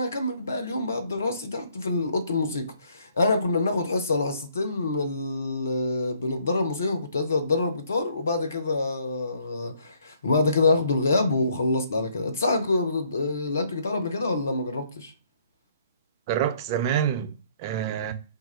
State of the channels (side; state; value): both; inverted; correlation -0.65